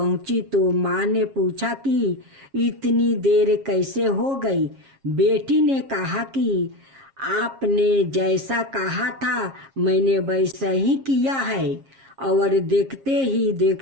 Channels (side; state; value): left; late; 7.4 ms